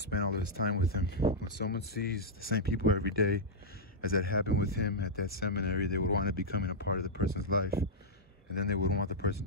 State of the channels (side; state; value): both; normal; correlation -0.08